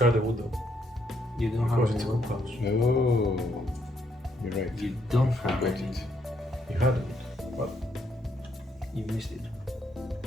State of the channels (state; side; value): normal; both; correlation 0.73